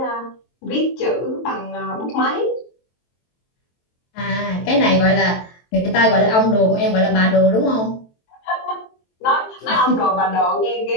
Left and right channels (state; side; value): late; right; 23 ms